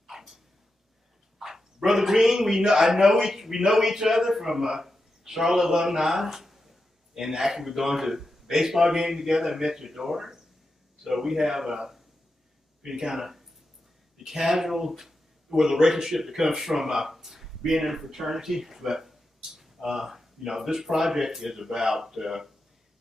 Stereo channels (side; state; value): both; normal; correlation 0.89